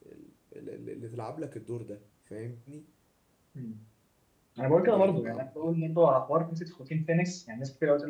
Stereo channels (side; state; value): both; identical; correlation 1.00